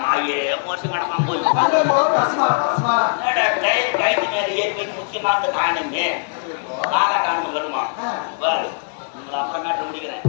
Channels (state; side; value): silent; right; digital silence